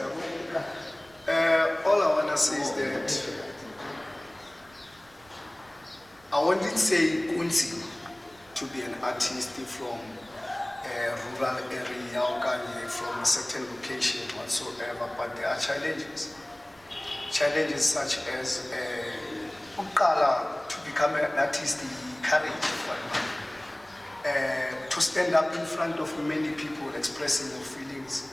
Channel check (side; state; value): right; noise; rumble, 29 dB below the sound